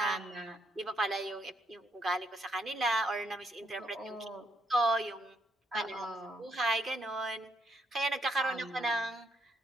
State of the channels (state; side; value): normal; both; correlation 0.75